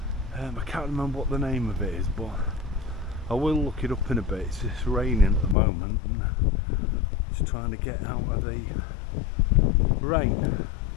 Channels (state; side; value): drops out; right; at 5.6 s